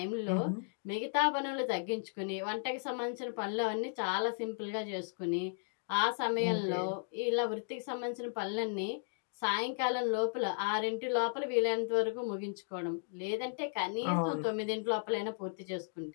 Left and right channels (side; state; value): right; silent; digital silence